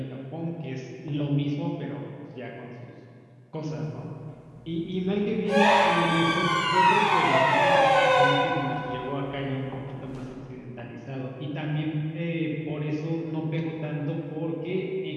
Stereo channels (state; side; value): identical; both; correlation 1.00